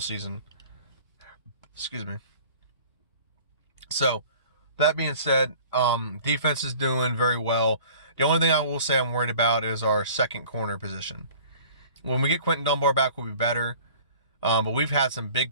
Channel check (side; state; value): both; inverted; correlation -0.47